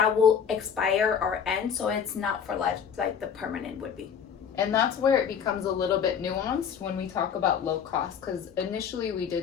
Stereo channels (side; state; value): right; quieter; 7.5 dB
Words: will expire or end. So it's not for life like the permanent would be. And that's where it becomes a little bit nuanced when we talk about low cost, because initially we